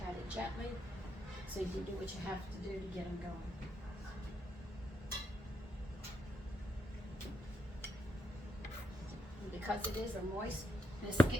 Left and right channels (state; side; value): normal; both; correlation 0.78